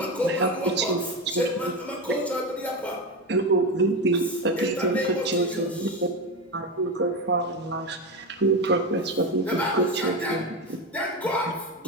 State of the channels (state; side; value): normal; both; correlation 0.17